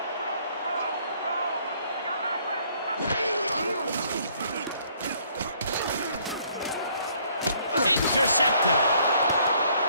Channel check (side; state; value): both; inverted; correlation -0.63